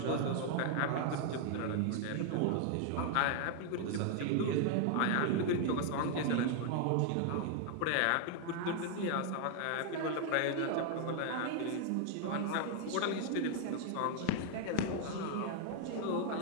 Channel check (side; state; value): both; different; correlation 0.00